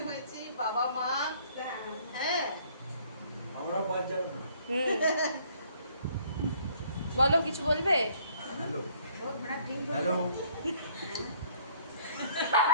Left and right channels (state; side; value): inverted; both; correlation -0.60